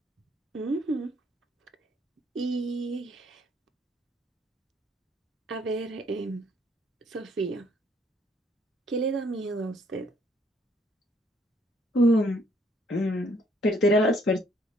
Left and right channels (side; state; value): both; normal; correlation 0.66